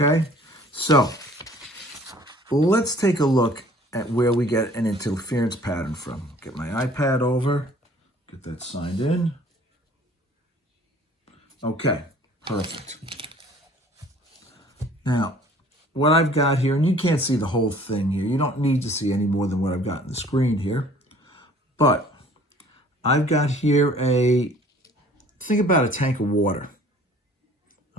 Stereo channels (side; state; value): both; normal; correlation 0.52